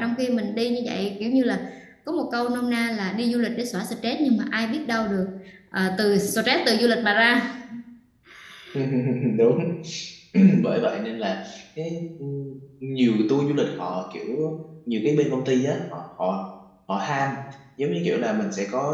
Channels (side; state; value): both; identical; correlation 1.00